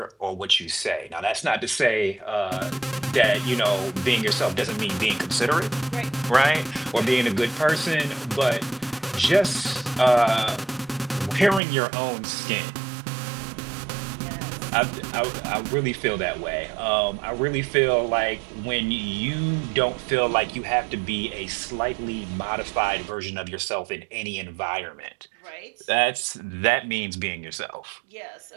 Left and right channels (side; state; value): left; drops out; at 11.6 s